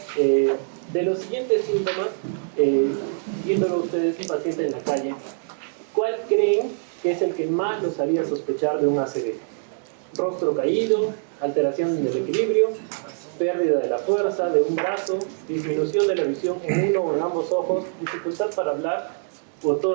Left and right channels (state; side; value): silent; left; digital silence